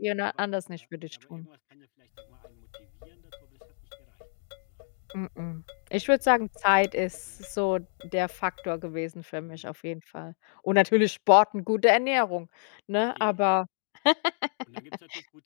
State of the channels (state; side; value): silent; right; digital silence